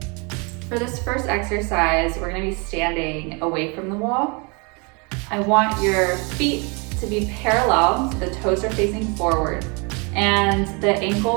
for this first exercise, we're gonna be standing away from the wall. I want your feet to be parallel, so the toes are facing forward, and the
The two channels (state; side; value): quieter; left; 31.6 dB